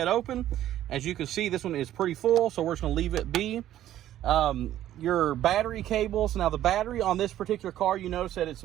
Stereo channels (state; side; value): quieter; left; 12.6 dB